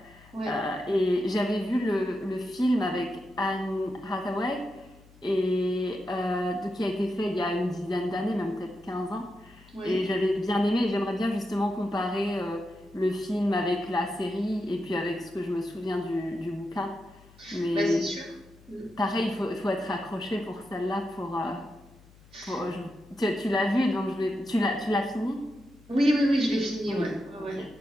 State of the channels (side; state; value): left; noise; hum, 25 dB below the sound